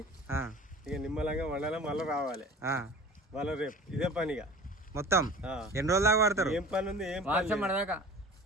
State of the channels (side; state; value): both; normal; correlation 0.41